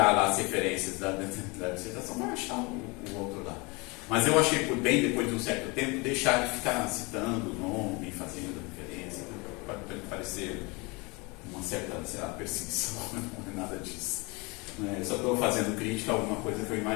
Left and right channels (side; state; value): right; quieter; 27.3 dB